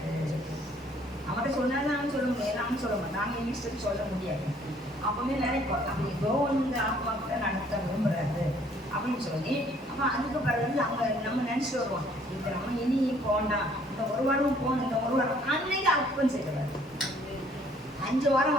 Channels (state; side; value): normal; both; correlation 0.61